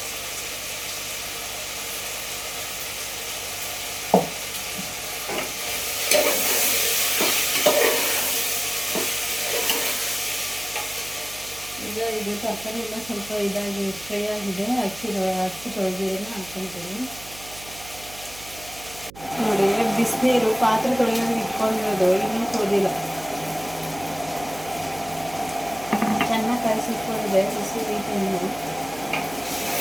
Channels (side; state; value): right; noise; hum, 17 dB below the sound